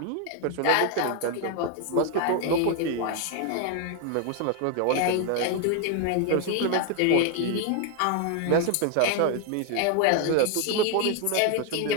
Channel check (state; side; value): different; both; correlation 0.01